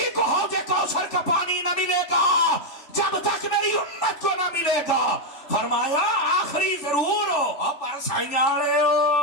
کو حوض کوثر کا پانی نہ ملے گا جب تک میری امت کو نہ ملے گا. فرمایا آخری ضرور ہو, اب پر سائنیاں رہے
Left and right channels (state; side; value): late; right; 3.4 ms